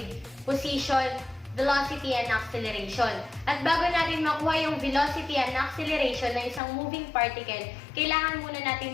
position, velocity, and acceleration. At bago natin makuha yung velocity and acceleration ng isang moving particle, kailangan muna natin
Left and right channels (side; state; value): right; drops out; at 6.6 s